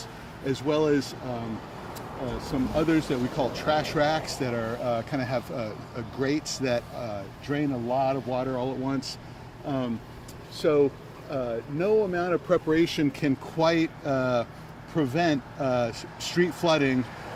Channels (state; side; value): identical; both; correlation 1.00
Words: as well as some others that we call trash racks that are kind of have grates that drain a lot of water all at once. So no amount of preparation can quite prevent street flooding